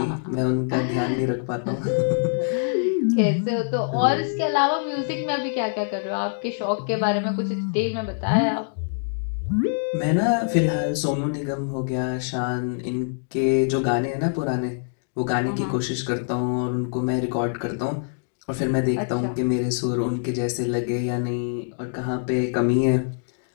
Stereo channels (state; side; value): silent; right; digital silence